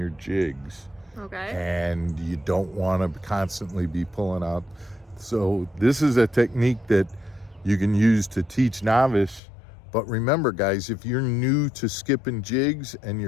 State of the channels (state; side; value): drops out; right; at 9.4 s